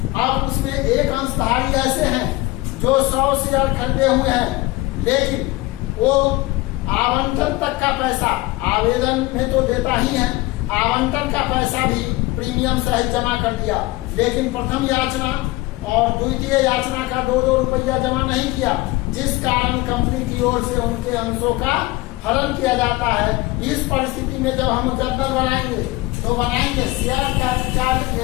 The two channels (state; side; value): quieter; right; 20.2 dB